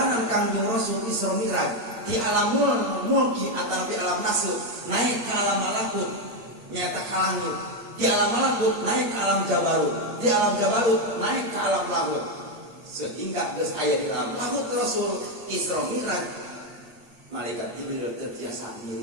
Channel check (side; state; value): left; late; 8.8 ms